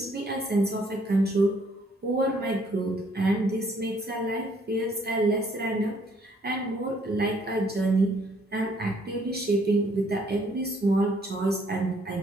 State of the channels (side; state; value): both; normal; correlation 0.65